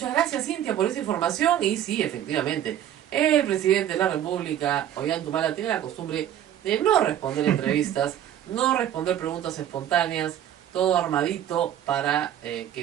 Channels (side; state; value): left; quieter; 10.9 dB